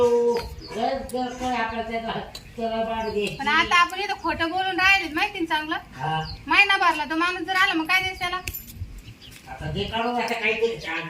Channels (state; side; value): identical; both; correlation 1.00